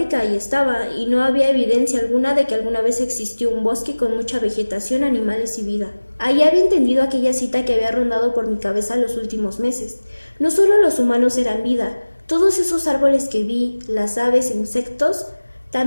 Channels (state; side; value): inverted; both; correlation -1.00